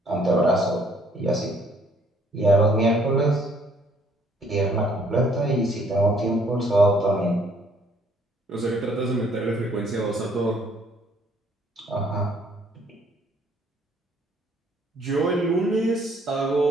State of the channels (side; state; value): both; normal; correlation 0.63